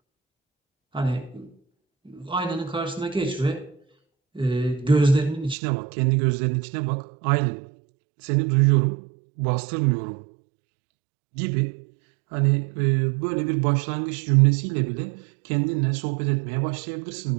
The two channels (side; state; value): left; drops out; at 5.6 s